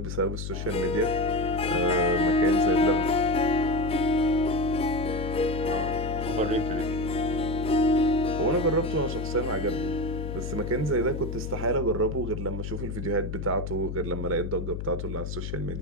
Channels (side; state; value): left; noise; hum, 5 dB below the sound